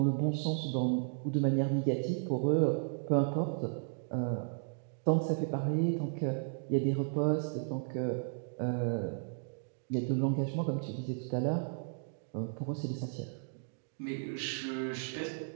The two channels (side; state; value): left; silent; digital silence